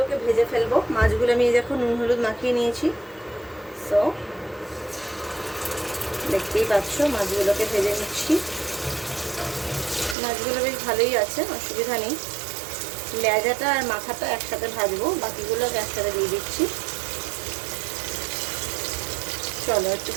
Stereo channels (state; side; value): drops out; left; at 10.2 s